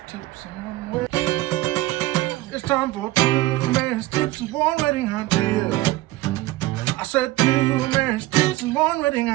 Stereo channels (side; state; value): left; quieter; 17.7 dB